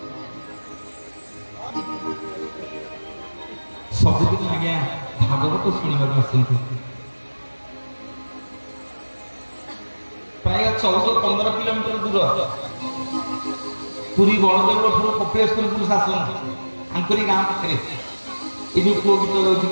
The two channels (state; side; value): inverted; both; correlation -1.00